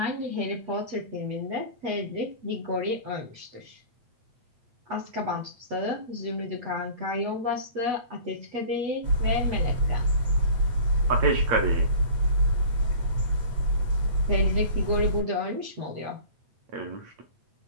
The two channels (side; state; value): left; late; 8.2 ms